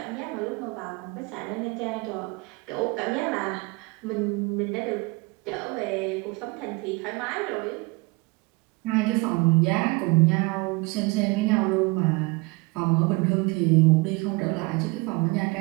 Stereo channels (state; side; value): quieter; left; 25.8 dB